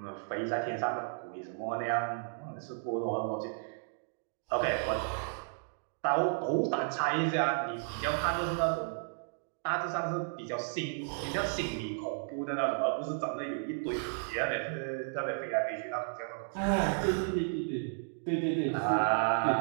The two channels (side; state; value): left; silent; digital silence